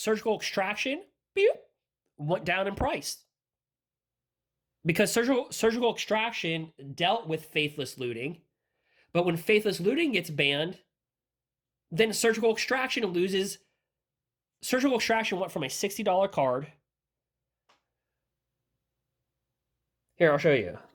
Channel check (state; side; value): identical; both; correlation 1.00